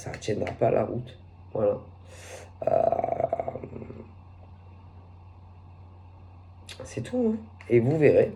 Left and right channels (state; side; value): identical; both; correlation 1.00